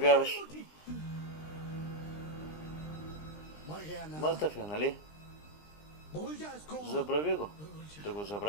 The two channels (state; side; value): late; right; 20 ms